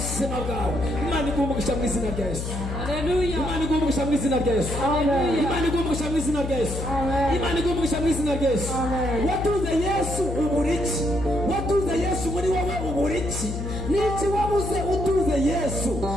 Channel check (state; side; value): noise; left; hum, 4 dB below the sound